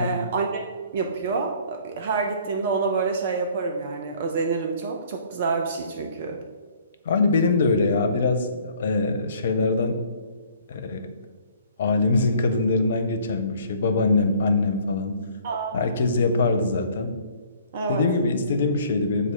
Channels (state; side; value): inverted; both; correlation -0.57